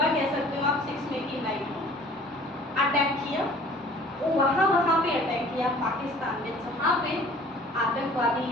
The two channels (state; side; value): normal; both; correlation 0.50